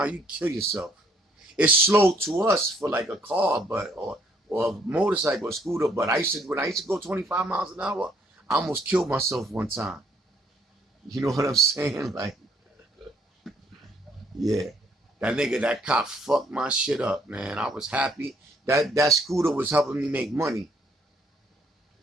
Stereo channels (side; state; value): both; normal; correlation 0.66